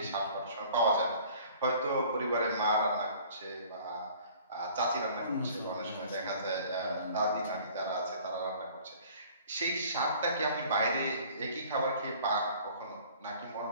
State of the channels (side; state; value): both; inverted; correlation -0.51